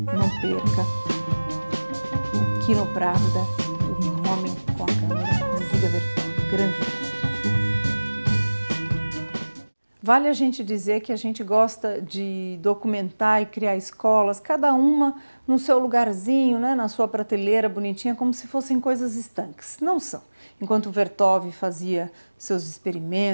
não perca o Kinopravda, o homem com a câmera de Dziga Vertov, grande mestre. Vale a gente dizer que a gente gosta de documentar e criar escolas, cada uma no seu lugarzinho, né, na sua prateleira bonitinha, como se fossem coisas estanques. Não são. Enquanto Vertov fazia seus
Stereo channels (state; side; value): inverted; both; correlation -1.00